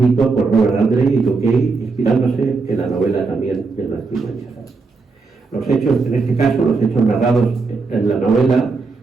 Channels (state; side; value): quieter; left; 4.2 dB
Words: por Robert Andre y Joe Kay, inspirándose en la novela también de Blasco Umaña. Los hechos, en este caso, los hechos narrados en la novela